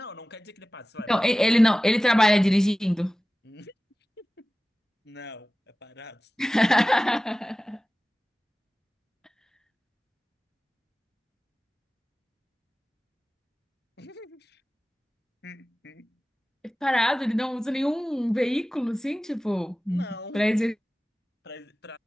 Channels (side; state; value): both; normal; correlation 0.96